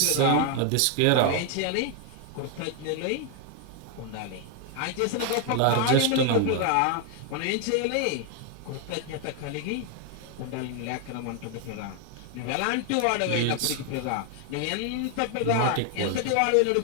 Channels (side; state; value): both; different; correlation 0.01